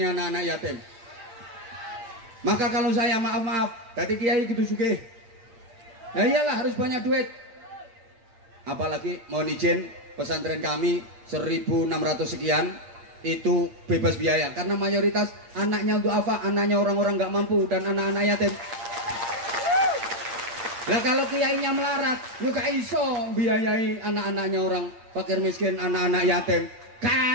anak-anak yatim? Maka kalau saya maaf, tadi kiai gitu sugih. Nah iyalah harus banyak duit. Apalagi mohon izin, pesantren kami 1.600 sekian itu bebas biaya karena mayoritas anaknya untuk apa? Anaknya orang-orang nggak mampu dan anak-anak yatim. Lah kalau kiainya melarat, juga iso biayai anak-anaknya orang fakir miskin, anak-anak yatim.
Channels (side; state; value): left; late; 8.7 ms